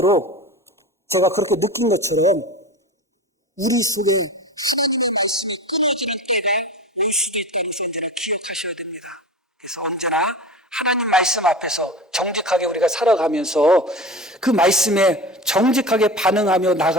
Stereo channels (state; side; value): normal; both; correlation 0.30